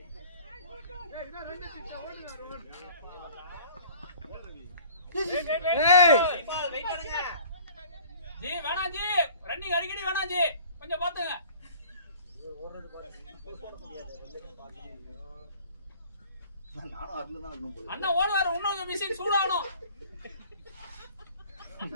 ஜி வேணாம் ஜி, ரன்னிங் அடிக்கடி வேணாம் ஜி, கொஞ்சம் பாத்துங்க. நானும் அதுல தான் இருக்கணும் போல. அண்ணா ஓடுவாரு, இன்னொரு மிஷின் சூடாகணும்.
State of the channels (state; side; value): inverted; both; correlation -0.48